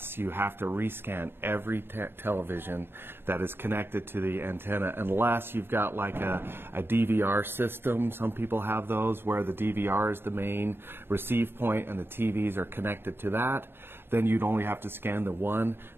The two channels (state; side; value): late; left; 0.11 ms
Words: you have to rescan every television that is connected to the antenna, unless you've got like a DVR system. Some people have those where the DVR is the main receive point and the TVs are connected to that. Then you'd only have to scan the one.